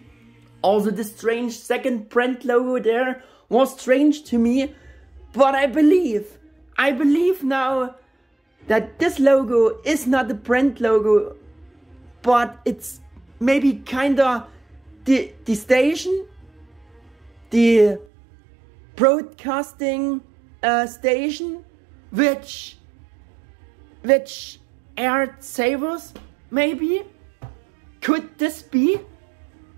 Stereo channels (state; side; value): drops out; left; at 18.1 s